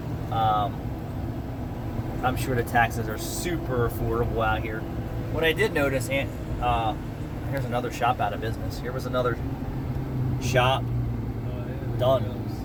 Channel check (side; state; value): both; identical; correlation 1.00